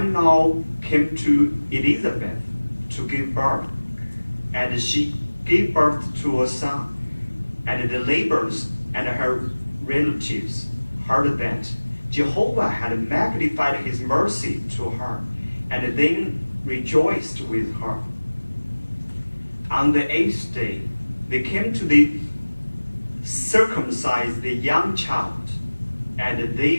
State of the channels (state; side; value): inverted; both; correlation -1.00